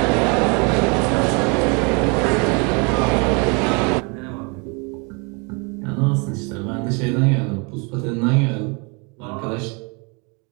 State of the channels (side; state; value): left; quieter; 32.3 dB